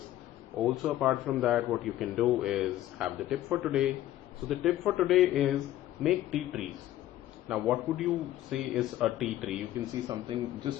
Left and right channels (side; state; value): right; quieter; 13.8 dB